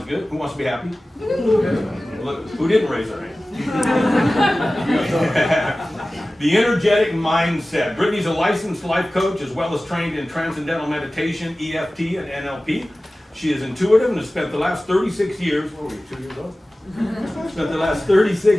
good. Who wants to be happy? Look, who didn't raise their hand? The energetic mindset. Brittany's a licensed life coach as well as trained in transcendental meditation, EFT, and NLP. She is intuitive and has spent the last 36 years, what were you, 2 years old? Spent the last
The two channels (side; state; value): both; normal; correlation 0.97